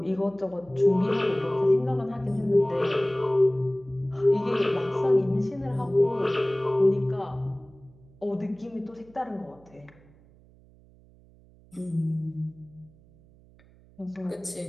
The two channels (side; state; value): right; noise; hum, 27 dB below the sound